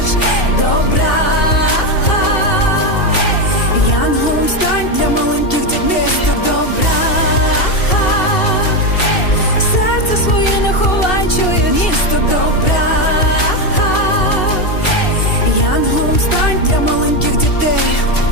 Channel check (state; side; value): late; right; 2.7 ms